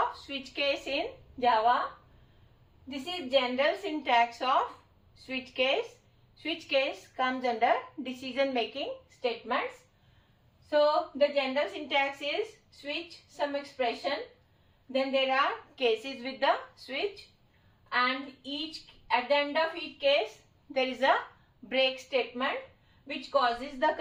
switch case in Java. This is general syntax of switch case. Switch case comes under decision making statements. So the general syntax is switch some expression. Then there are cases with the switch, and at the end of each case there is a break statement which causes the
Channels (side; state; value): both; identical; correlation 1.00